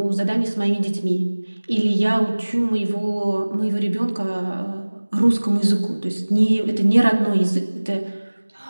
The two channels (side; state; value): both; inverted; correlation -1.00